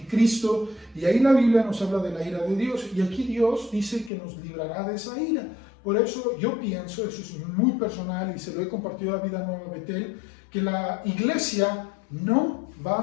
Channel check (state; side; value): drops out; right; at 4.1 s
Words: y ahí la Biblia nos habla de la ira de Dios, y aquí Dios dice que nos librará de esa ira. Por eso yo pienso, eso es muy personal y se lo he compartido a Vida Nueva Betel, que la iglesia no